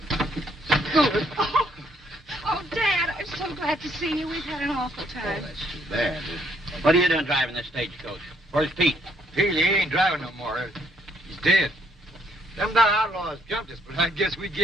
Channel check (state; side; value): normal; both; correlation 0.68